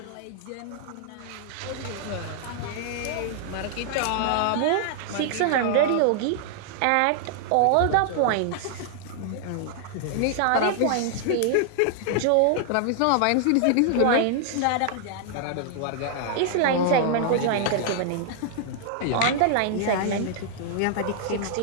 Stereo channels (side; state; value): both; different; correlation -0.01